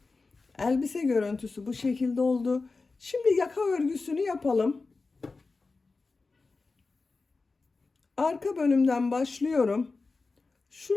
Elbise görüntüsü bu şekilde oldu. Şimdi yaka örgüsünü yapalım. Arka bölümden başlıyorum.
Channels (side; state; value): right; quieter; 3.9 dB